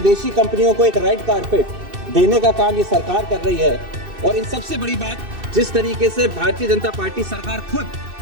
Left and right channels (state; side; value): late; left; 2.6 ms